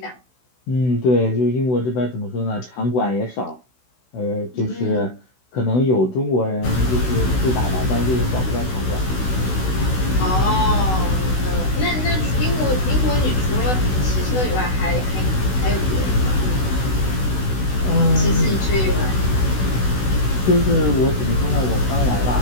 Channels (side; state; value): right; late; 16 ms